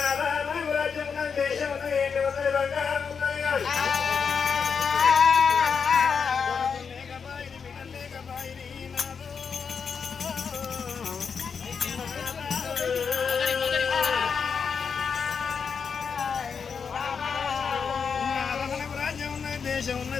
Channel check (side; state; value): right; quieter; 6.1 dB